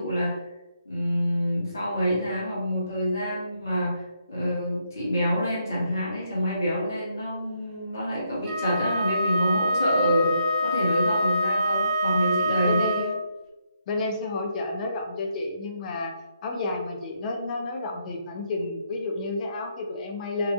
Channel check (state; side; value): inverted; both; correlation -0.77